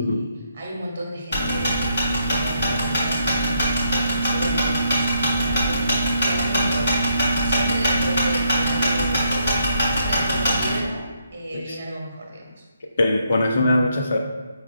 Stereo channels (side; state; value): both; inverted; correlation -0.76